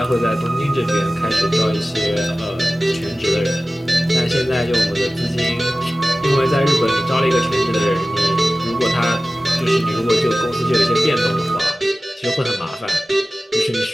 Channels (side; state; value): both; normal; correlation 0.96